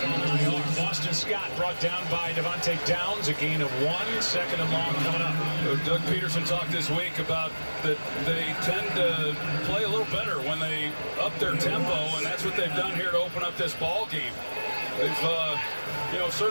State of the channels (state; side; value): inverted; both; correlation -1.00